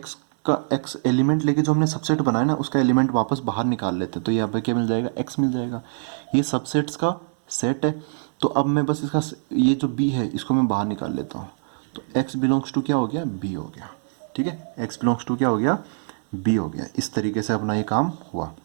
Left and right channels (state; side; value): silent; left; digital silence